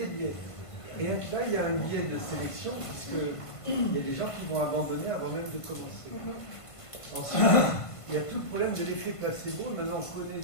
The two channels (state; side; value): late; right; 1.5 ms